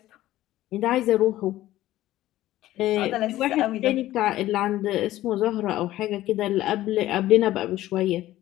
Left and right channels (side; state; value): right; quieter; 15.0 dB